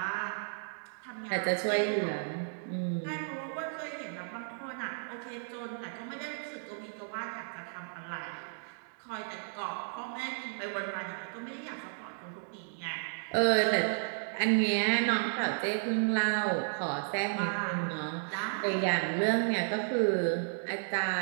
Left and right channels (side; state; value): left; silent; digital silence